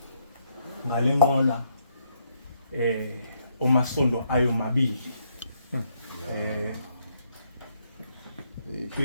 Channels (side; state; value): both; inverted; correlation -0.74